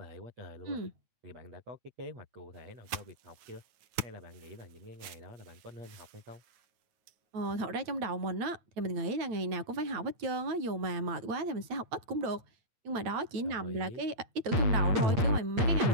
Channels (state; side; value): late; left; 9.4 ms